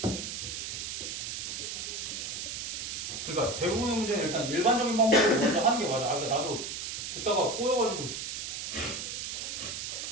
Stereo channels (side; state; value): right; noise; hiss, 5 dB below the sound